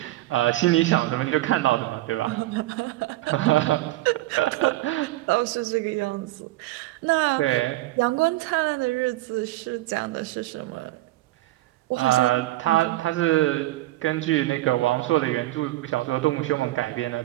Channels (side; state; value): left; quieter; 17.1 dB